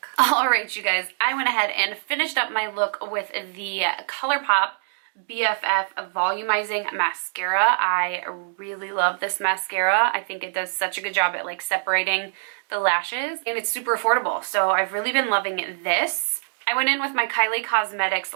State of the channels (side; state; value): left; silent; digital silence